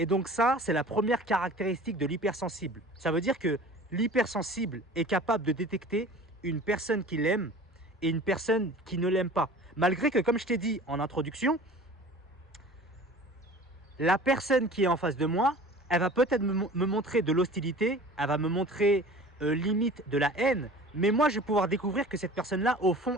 donc ça, c'est la première caractéristique de l'hypersensible. Ça veut dire que l'hypersensible est capable de détecter une personne qui l'aime et une personne qui ne l'aime pas. Malgré que, comme je t'ai dit en introduction, la personne qui est en face de moi, elle va peut-être me montrer de l'hostilité, elle va me montrer limite de la haine, mais moi, je vais pouvoir découvrir que cette personne-là, au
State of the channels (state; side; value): normal; both; correlation 0.43